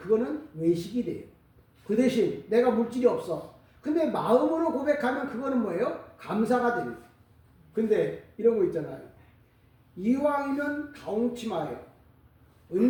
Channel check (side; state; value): both; identical; correlation 1.00